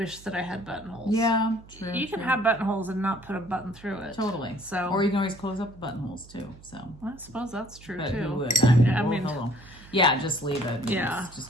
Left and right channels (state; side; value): noise; right; hum, 21 dB below the sound